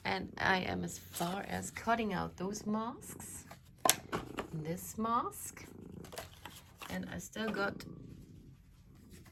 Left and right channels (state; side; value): identical; both; correlation 1.00